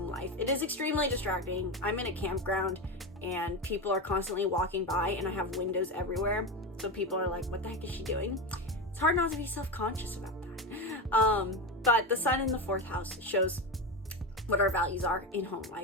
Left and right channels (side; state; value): both; normal; correlation 0.18